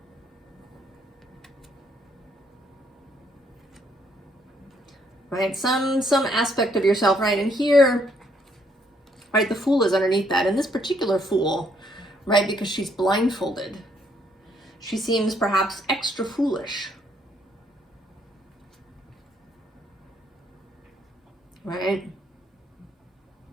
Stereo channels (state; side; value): normal; both; correlation 0.69